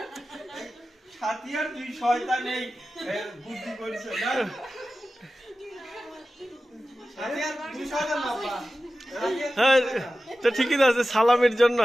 ছাতিয়ার দুই শয়তান এই বুদ্ধি করেছে না ছাতিয়ার দুই শয়তান বাবা হ্যাঁ তো ঠিকই আছে সালামের জন্য।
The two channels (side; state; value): both; normal; correlation 0.95